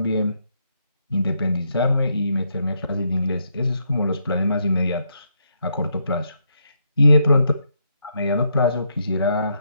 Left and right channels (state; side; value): inverted; both; correlation -0.77